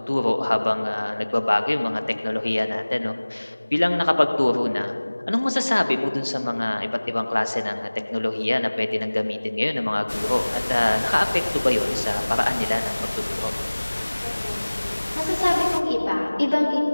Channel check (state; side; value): inverted; both; correlation -1.00